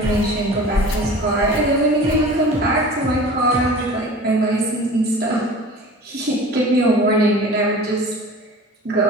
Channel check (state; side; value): normal; both; correlation 0.40